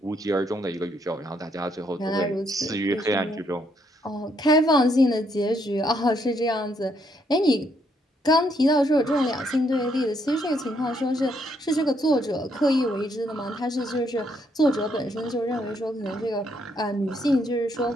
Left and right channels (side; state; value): both; normal; correlation 0.73